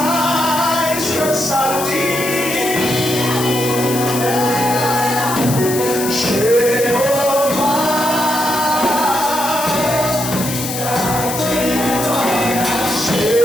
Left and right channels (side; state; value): left; noise; hiss, 6 dB below the sound